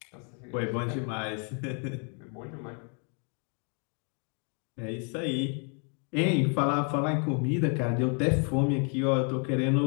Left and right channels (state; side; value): quieter; right; 39.8 dB